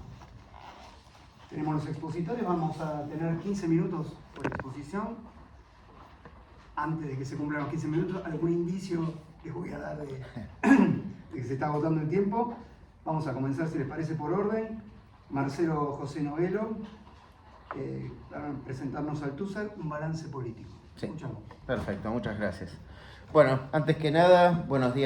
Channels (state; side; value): identical; both; correlation 1.00